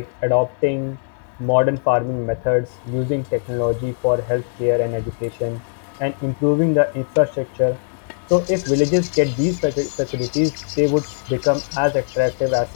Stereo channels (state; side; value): silent; right; digital silence